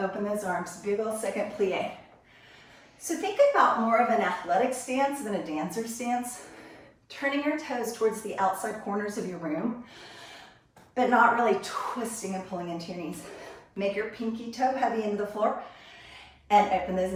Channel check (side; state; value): both; identical; correlation 1.00